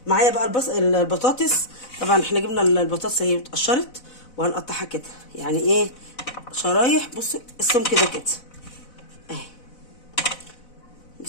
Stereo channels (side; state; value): right; late; 4.0 ms